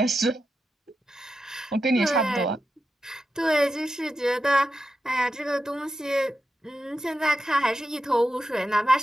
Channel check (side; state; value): both; normal; correlation 0.89